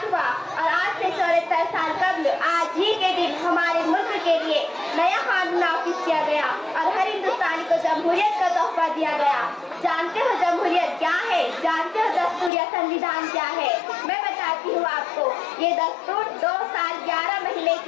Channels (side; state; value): right; drops out; at 12.5 s